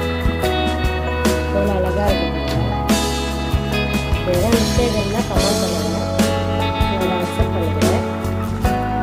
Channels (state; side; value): identical; both; correlation 1.00